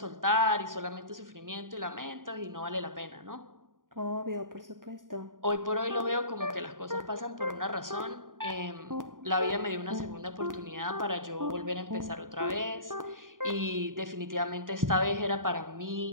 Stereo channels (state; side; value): late; left; 0.90 ms